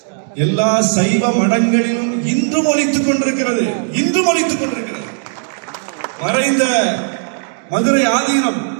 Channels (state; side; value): silent; left; 64 dB below the other